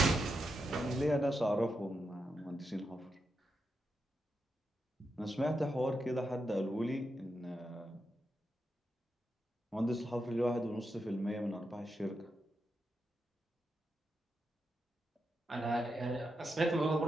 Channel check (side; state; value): both; normal; correlation 0.86